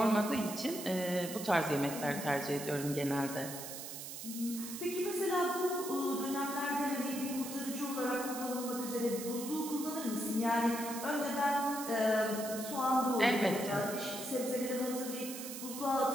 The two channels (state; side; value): noise; right; hiss, 9 dB below the sound